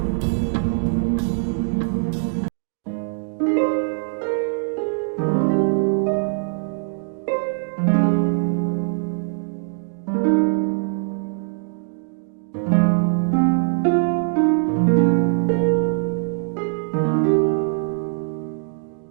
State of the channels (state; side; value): silent; left; 64 dB below the other